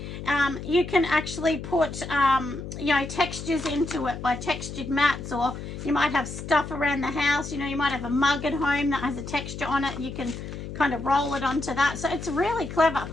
You can actually put, you know, textures into it by textured mats, or you might have stuff around the house. You know, you might have a mug at home that has a texture on it. You can kind of roll it onto that. So it's really clever.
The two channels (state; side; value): noise; left; hum, 9 dB below the sound